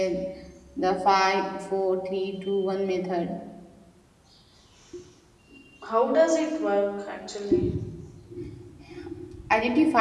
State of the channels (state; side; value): identical; both; correlation 1.00